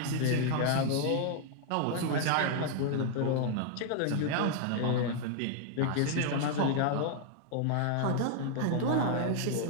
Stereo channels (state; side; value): different; both; correlation 0.00